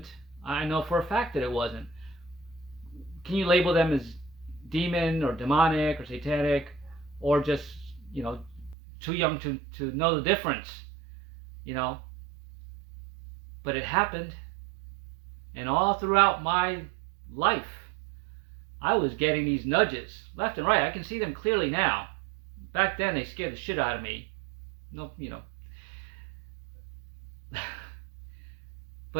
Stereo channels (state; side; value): drops out; left; at 8.8 s